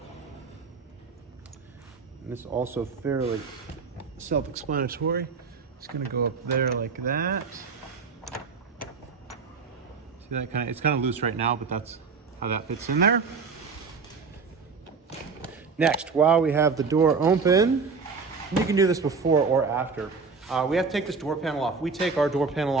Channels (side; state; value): left; quieter; 5.0 dB